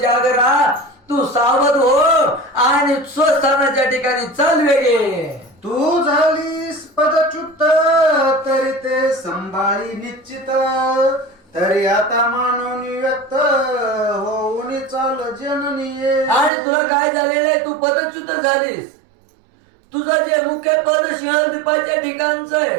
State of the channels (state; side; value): drops out; left; at 16.5 s